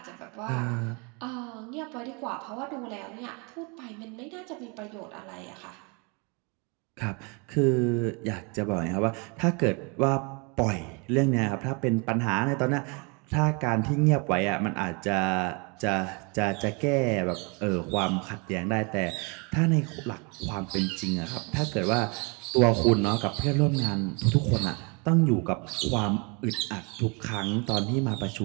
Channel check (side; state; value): left; quieter; 31.7 dB